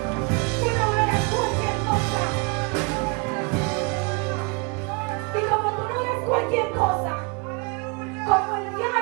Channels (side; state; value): left; quieter; 31.6 dB